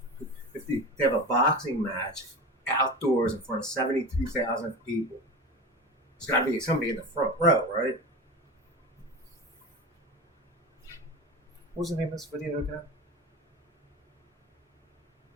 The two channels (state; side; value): normal; both; correlation 0.28